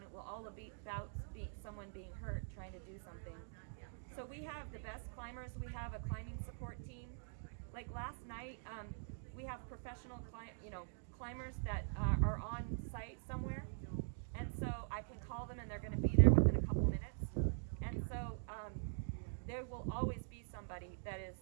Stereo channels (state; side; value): silent; left; digital silence